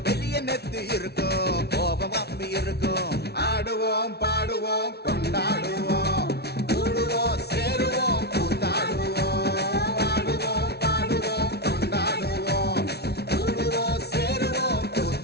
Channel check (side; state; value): right; late; 0.48 ms